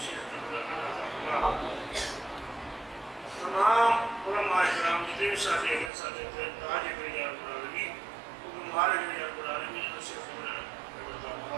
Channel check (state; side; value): drops out; left; at 5.9 s